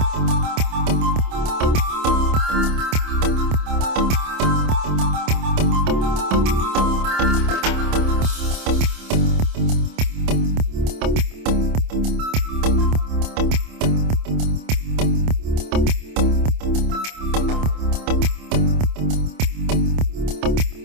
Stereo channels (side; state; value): left; late; 27 ms